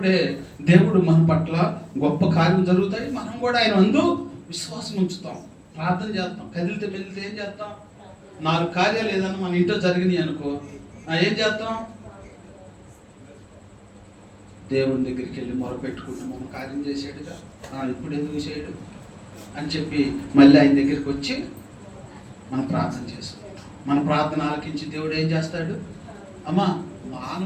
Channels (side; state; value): both; identical; correlation 1.00